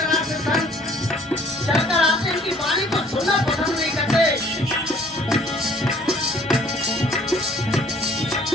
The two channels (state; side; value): normal; both; correlation 0.57